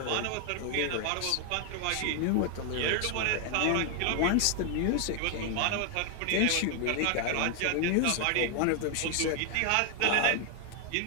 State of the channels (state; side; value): different; both; correlation 0.00